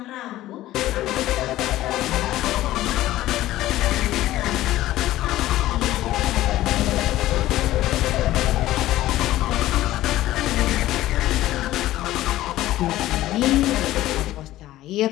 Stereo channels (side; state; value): right; quieter; 15.3 dB